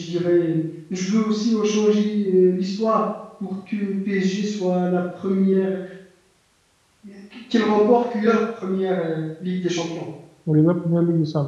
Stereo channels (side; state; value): both; identical; correlation 1.00